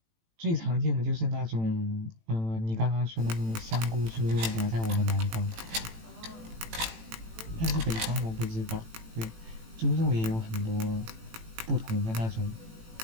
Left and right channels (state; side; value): late; left; 18 ms